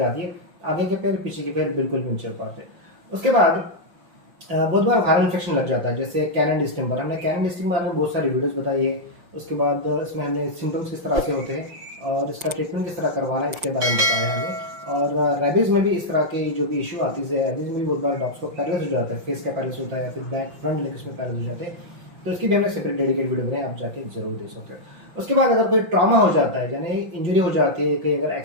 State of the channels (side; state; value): left; late; 5.8 ms